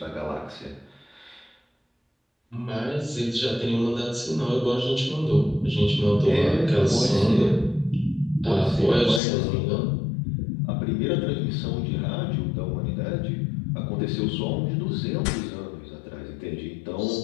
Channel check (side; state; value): right; drops out; at 9.2 s